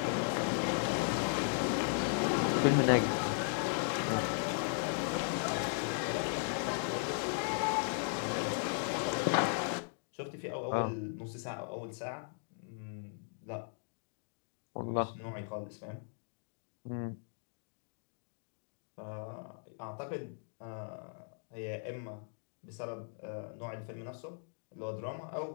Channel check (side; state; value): right; silent; digital silence